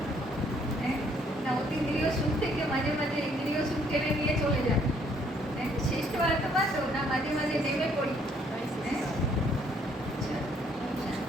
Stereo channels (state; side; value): normal; both; correlation 0.65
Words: হ্যাঁ, না অতীন্দ্রিয় সুখ থেকে মাঝে মাঝে ইন্দ্রিয় সুখ টেনে নিয়ে চলে যায়। শ্রেষ্ঠ আত্মা তো না মাঝে মাঝে নেমে